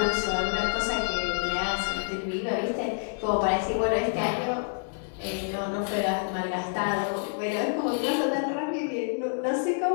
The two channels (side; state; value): right; silent; 59 dB below the other